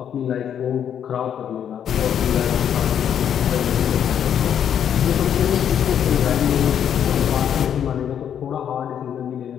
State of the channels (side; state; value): right; quieter; 9.0 dB